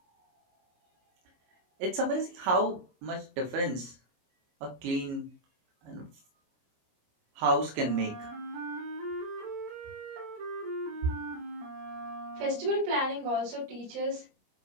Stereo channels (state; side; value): late; left; 23 ms